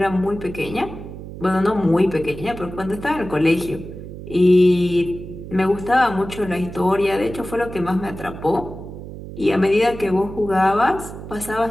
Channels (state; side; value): noise; right; hum, 12 dB below the sound